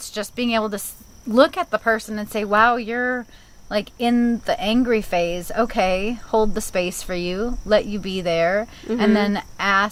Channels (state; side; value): identical; both; correlation 1.00